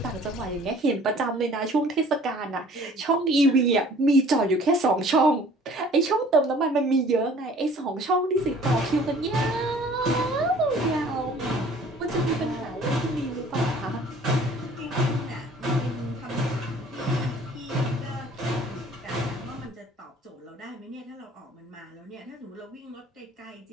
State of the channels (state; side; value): normal; both; correlation 0.51